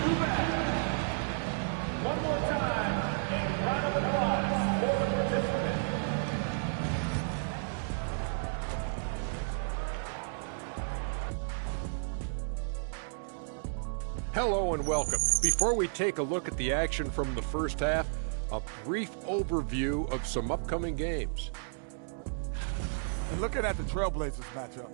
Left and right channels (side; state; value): left; silent; digital silence